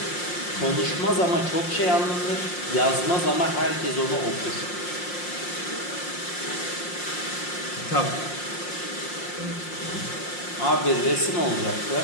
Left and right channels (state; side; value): late; right; 5.6 ms